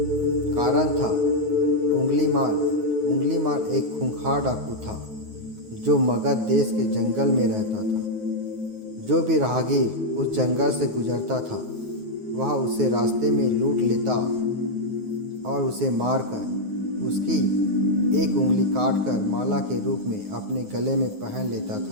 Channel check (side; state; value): left; late; 9.5 ms